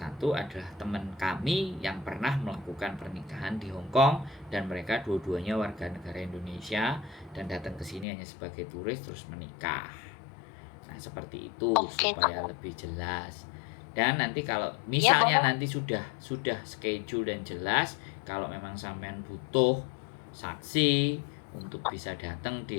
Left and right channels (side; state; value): right; drops out; at 8.1 s